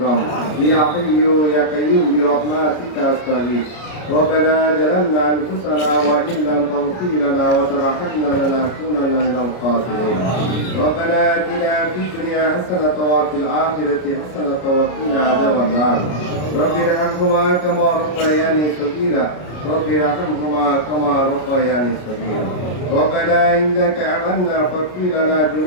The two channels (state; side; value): late; right; 33 ms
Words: يا حي يا قيوم برحمتك أستغيث. ربنا ظلمنا أنفسنا وإن لم تغفر لنا وترحمنا لنكونن من الخاسرين. ربنا آتنا في الدنيا حسنة وفي الآخرة حسنة وقنا عذاب النار. رب ارحمهما كما ربياني صغيرا. رب ارحمهما كما ربياني صغيرا. ربنا إنك آمنا فاغفر لنا